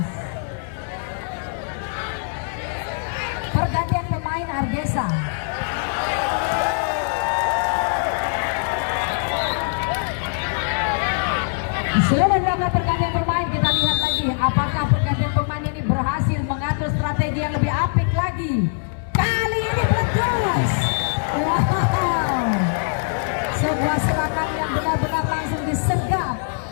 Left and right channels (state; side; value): silent; right; 64 dB below the other